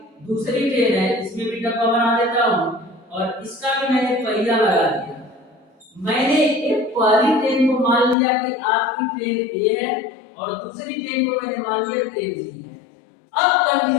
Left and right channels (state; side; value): drops out; right; at 8.2 s